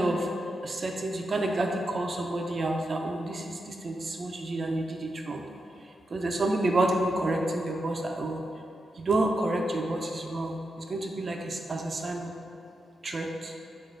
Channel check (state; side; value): normal; both; correlation 0.87